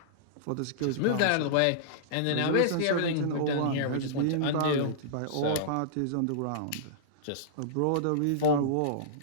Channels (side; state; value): both; different; correlation -0.02